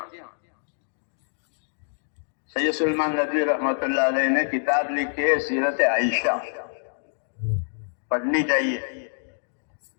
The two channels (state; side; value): silent; right; digital silence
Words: سید سلمان ندوی رحمۃ اللہ علیہ نے کتاب لکھی ہے سیرت عائشہ، پڑھنی چاہیے.